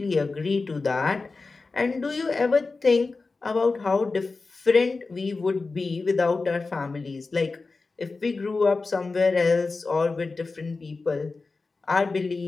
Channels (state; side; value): quieter; right; 3.9 dB